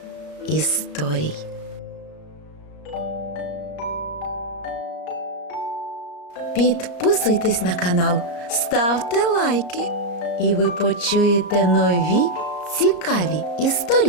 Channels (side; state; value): right; late; 34 ms